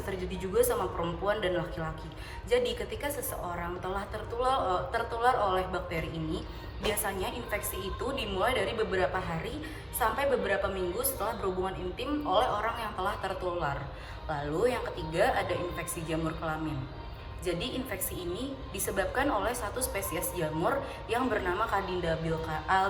terjadi juga sama perempuan dan laki-laki. Jadi ketika seseorang telah tertular oleh bakteri ini, biasanya infeksi itu dimulai dari beberapa hari sampai beberapa minggu setelah berhubungan intim oleh orang yang telah tertular. Lalu yang ketiga ada infeksi jamur kelamin. Jadi infeksi ini disebabkan oleh satu spesies jamur yang bernama Candida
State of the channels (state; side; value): identical; both; correlation 1.00